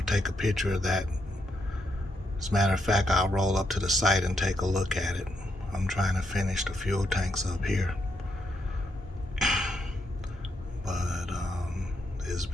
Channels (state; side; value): normal; both; correlation 0.79